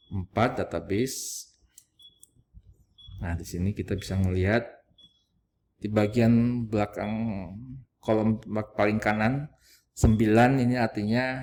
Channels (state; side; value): identical; both; correlation 1.00